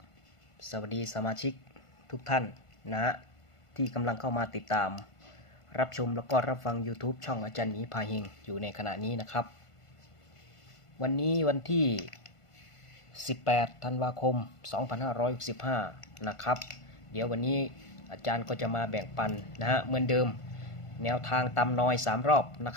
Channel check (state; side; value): late; right; 1.5 ms